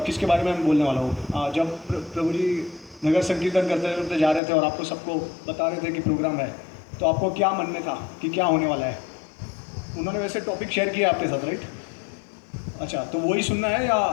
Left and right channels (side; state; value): right; drops out; at 4.4 s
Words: किसके बारे में मैं बोलने वाला हूँ? जब प्रभु जी नगर संकीर्तन करते करते जा रहे थे और आपको सबको बता रहे थे कि प्रोग्राम है, तो आपको क्या मन में था कि क्या होने वाला है? उन्होंने वैसे टॉपिक शेयर किया आपके साथ, राइट? अच्छा, तो वही सुनना है या